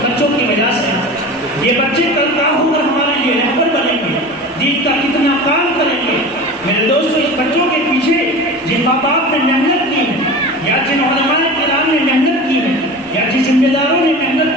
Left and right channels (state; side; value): normal; both; correlation 0.33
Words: کی وجہ سے. یہ بچے کل کا ہو کر ہمارے لیے رہبر بنیں گے، دین کا کتنا کام کریں گے. میرے دوستو، اس بچوں کے پیچھے جن ماں باپ نے محنت کی ہے یا جن علماء کرام نے محنت کی ہے یا جن ذمہ داروں نے